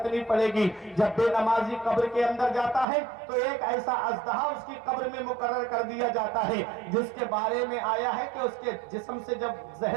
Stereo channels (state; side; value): drops out; left; at 2.9 s